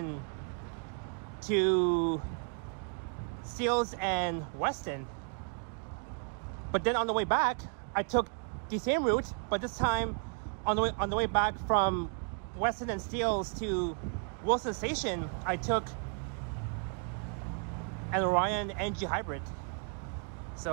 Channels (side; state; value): left; quieter; 39.0 dB